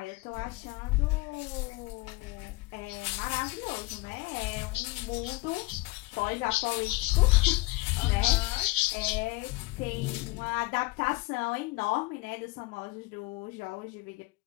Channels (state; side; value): quieter; right; 22.0 dB